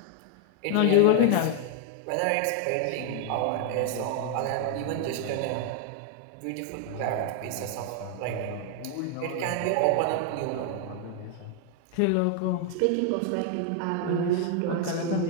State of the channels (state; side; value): different; both; correlation 0.00